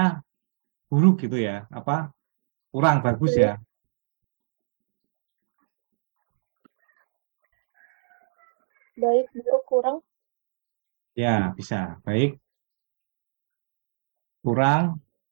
buruk gitu ya. Apa? Kurang bagus ya. Baik, buruk, kurang. Ya, bisa. Baik, kurang,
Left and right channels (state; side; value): silent; left; digital silence